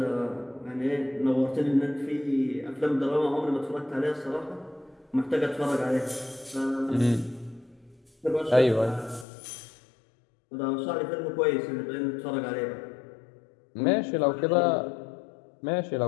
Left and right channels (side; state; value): right; drops out; at 9.2 s